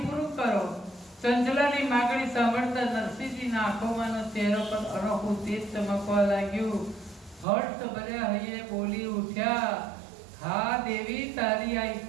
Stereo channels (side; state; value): left; drops out; at 7.5 s